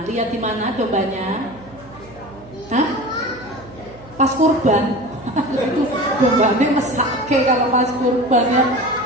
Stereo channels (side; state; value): right; noise; hum, 21 dB below the sound